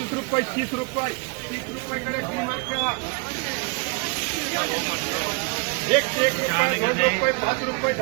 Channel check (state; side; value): quieter; left; 32.0 dB